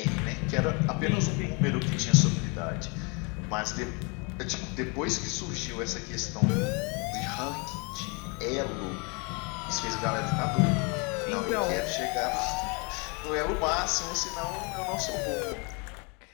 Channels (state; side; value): quieter; right; 31.7 dB